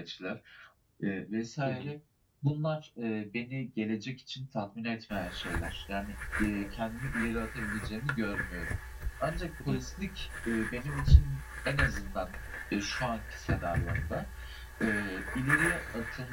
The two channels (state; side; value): identical; both; correlation 1.00